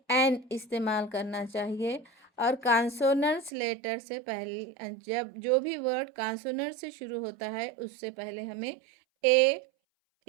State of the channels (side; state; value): left; drops out; at 3.5 s